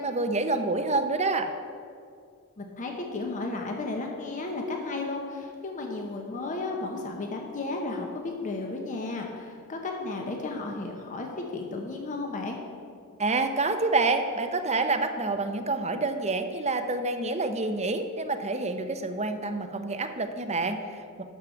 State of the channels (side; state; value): both; normal; correlation 0.05